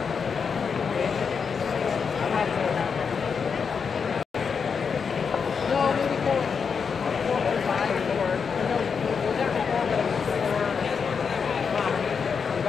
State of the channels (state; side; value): quieter; right; 6.0 dB